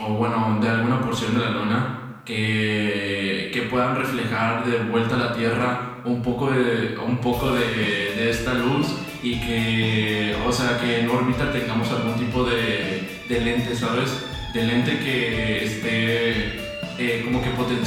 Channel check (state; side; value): identical; both; correlation 1.00